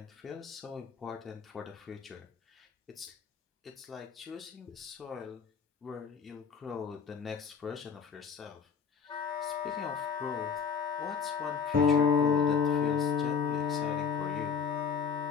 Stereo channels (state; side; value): quieter; right; 6.4 dB